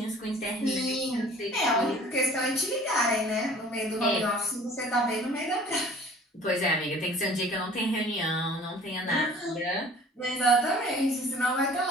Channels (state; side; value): normal; both; correlation 0.49